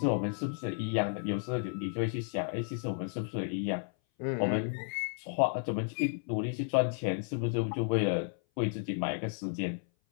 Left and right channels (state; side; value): silent; right; 56 dB below the other